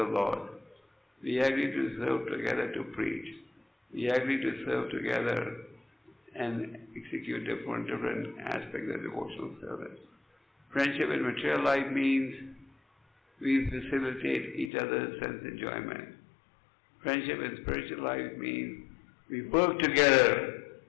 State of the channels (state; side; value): drops out; right; at 14.7 s